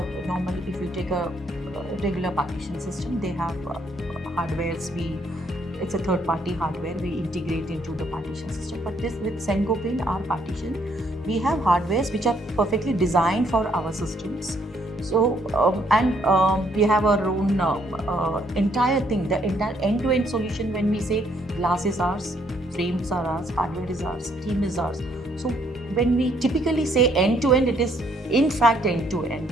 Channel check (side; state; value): both; normal; correlation 0.69